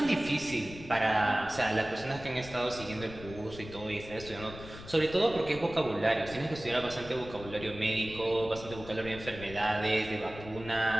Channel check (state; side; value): noise; left; rumble, 14 dB below the sound